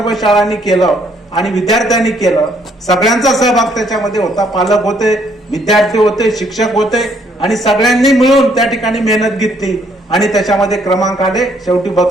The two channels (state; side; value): normal; both; correlation 0.67